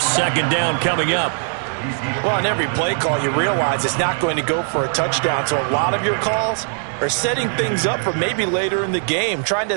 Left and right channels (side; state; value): left; silent; digital silence